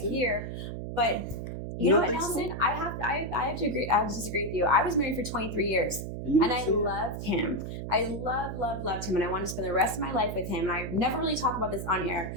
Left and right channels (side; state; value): right; noise; hum, 6 dB below the sound